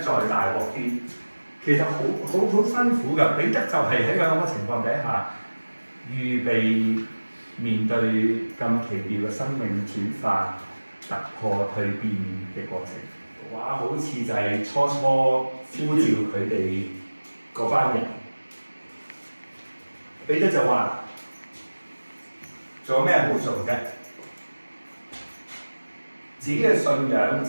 大鑊啲？其實好辛苦㗎。彼得就係喺咁嘅情況底下，預備面對咁奇妙嘅生命轉化、突破、蛻變嘅過程。哇！好似就係初呼召佢哋嗰班人，彼得就話：做咩好做啫？自己嘅信仰、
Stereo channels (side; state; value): both; inverted; correlation -1.00